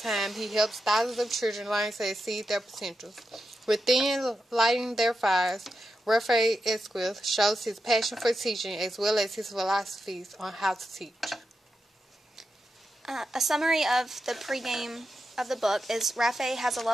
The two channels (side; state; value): both; normal; correlation 0.88